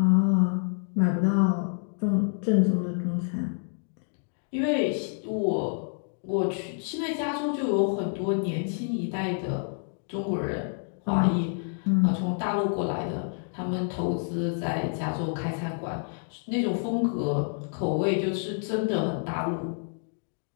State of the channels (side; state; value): right; silent; 59 dB below the other